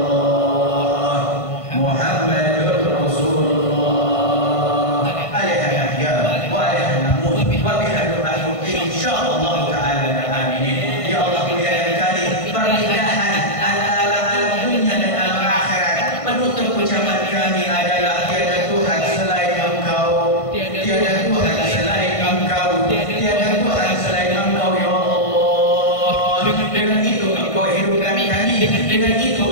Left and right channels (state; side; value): late; right; 1.5 ms